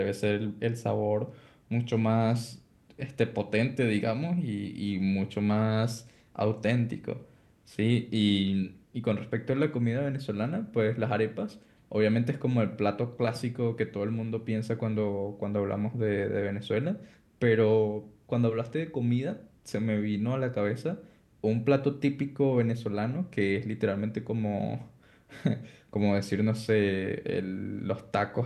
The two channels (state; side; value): identical; both; correlation 1.00